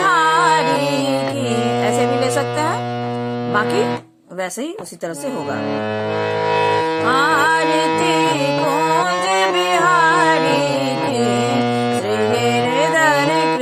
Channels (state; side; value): identical; both; correlation 1.00